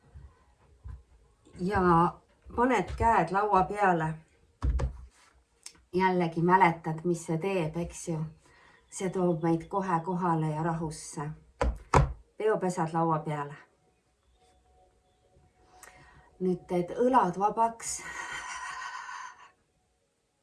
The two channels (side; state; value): both; identical; correlation 1.00